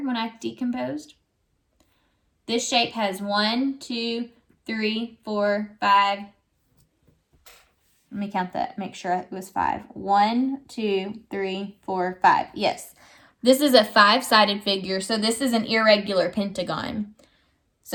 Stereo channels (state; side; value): identical; both; correlation 1.00